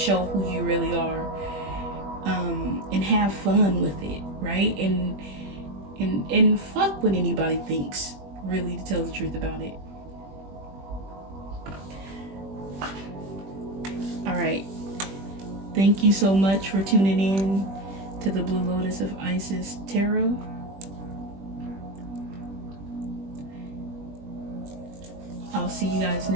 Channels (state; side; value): late; left; 21 ms